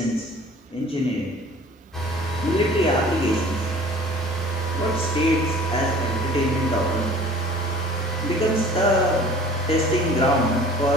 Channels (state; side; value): normal; both; correlation 0.47